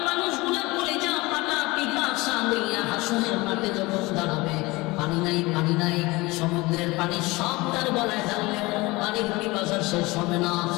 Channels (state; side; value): quieter; right; 22.4 dB